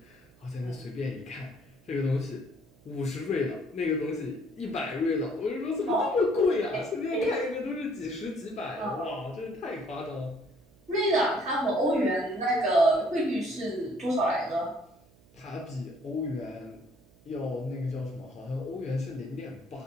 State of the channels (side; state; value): right; noise; hum, 28 dB below the sound